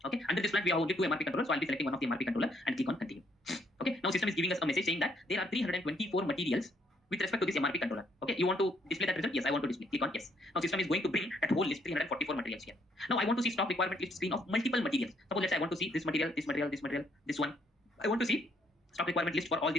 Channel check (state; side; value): normal; both; correlation 0.69